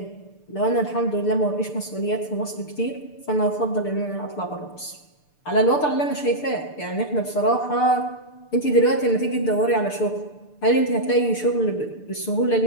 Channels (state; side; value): late; right; 6.8 ms